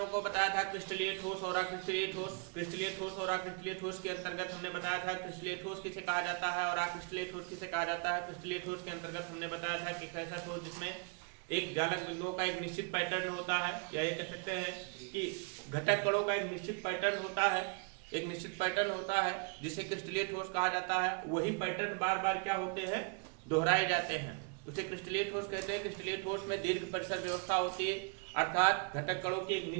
को बताया था क्रिस्टलीय ठोस और अक्रिस्टलीय ठोस। क्रिस्टलीय ठोस और अक्रिस्टलीय ठोस के अंतर्गत हमने बताया था क्रिस्टलीय ठोस किसे कहा जाता है और अक्रिस्टलीय ठोस किसे कहा जाता है। क्रिस्टलीय ठोस के अंतर्गत हमने बताया था कि ऐसा ठोस जिसमें एक जालक बिंदुओं का एक निश्चित पैटर्न होता है, या ये कह सकते हैं कि घटक कणों का एक निश्चित पैटर्न होता है, एक निश्चित पैटर्न होता है जिसे क्रिस्टलीय ठोस कहा जाता है। वही पैटर्न बार बार क्या होते हैं, दोहराए जाते हैं, उसे क्रिस्टलीय ठोस कहते हैं। क्रिस्टलीय ठोस में दीर्घ परिसर व्यवस्था होती है, अर्थात घटक कणों की एक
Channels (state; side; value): quieter; left; 37.4 dB